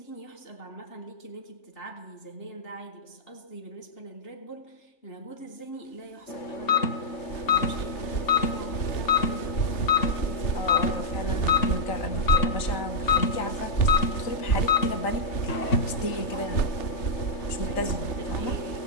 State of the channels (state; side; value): late; right; 3.3 ms